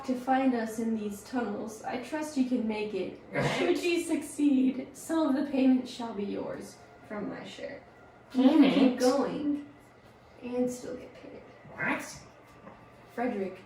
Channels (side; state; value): both; identical; correlation 1.00